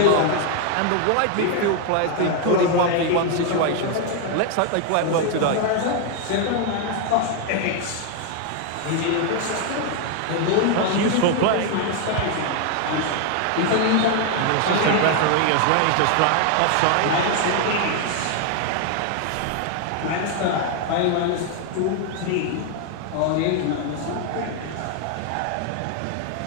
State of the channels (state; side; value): different; both; correlation 0.00